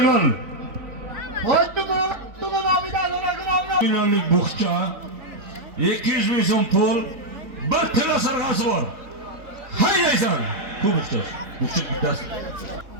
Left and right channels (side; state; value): left; late; 4.2 ms